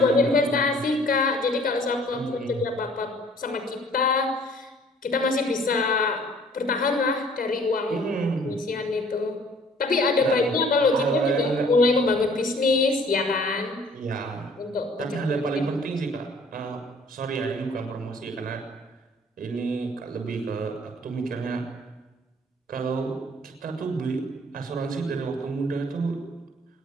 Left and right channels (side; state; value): both; normal; correlation 0.55